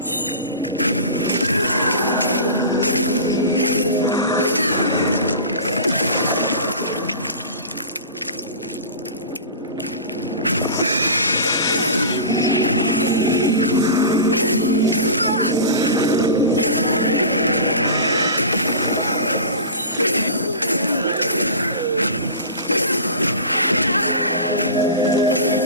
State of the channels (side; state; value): both; inverted; correlation -0.33